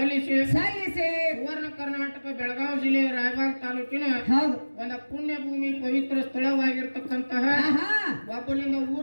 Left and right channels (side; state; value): both; inverted; correlation -1.00